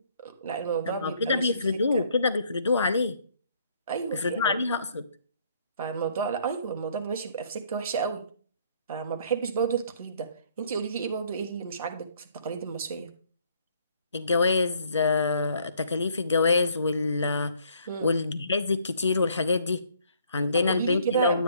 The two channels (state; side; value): inverted; both; correlation -0.63